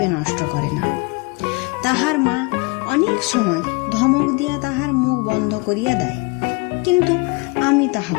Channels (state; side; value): quieter; right; 27.4 dB